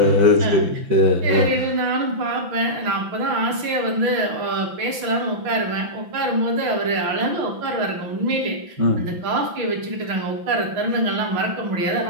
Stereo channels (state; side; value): late; left; 5.9 ms